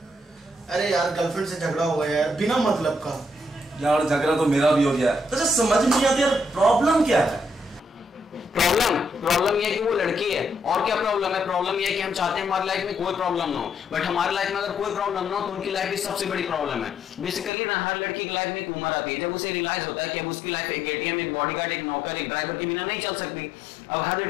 अरे यार गर्लफ्रेंड से झगड़ा हुआ है यार, बिना मतलब का। यार झगड़ा तो मेरा भी हो गया है। तो समझ नहीं आता यार, प्रॉब्लम क्या है? प्रॉब्लम ये है कि वो लड़की है। और क्या प्रॉब्लम है? प्रॉब्लम ये है कि हम चाहते हैं हमारी लाइफ में कोई प्रॉब्लम ना हो, बट हमारी लाइफ में अगर कोई प्रॉब्लम ना हो तो उनकी लाइफ की सबसे बड़ी प्रॉब्लम है। बेसिकली ना हर लड़की की लाइफ में एक उम्र आती है जब उसे रियलाइज होता है कि अब उसकी लाइफ एक एटीएम, एक बॉडीगार्ड, एक नौकर, एक ड्राइवर के बिना नहीं चल सकती। अब हर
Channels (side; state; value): right; drops out; at 17.5 s